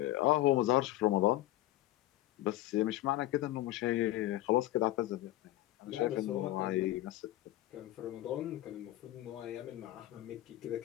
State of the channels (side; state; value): right; quieter; 15.4 dB